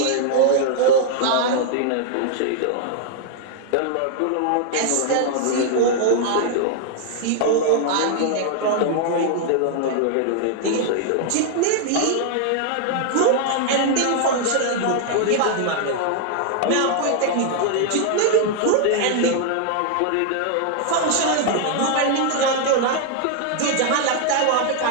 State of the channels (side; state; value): both; different; correlation 0.00